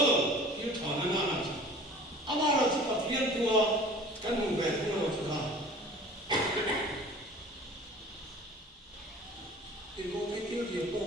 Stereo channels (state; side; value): normal; both; correlation 0.45